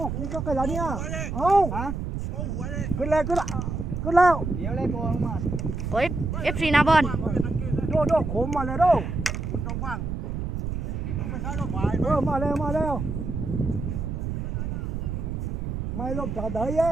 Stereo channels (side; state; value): right; noise; rumble, 3 dB below the sound